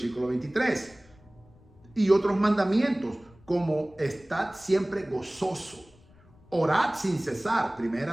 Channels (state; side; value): noise; left; rumble, 27 dB below the sound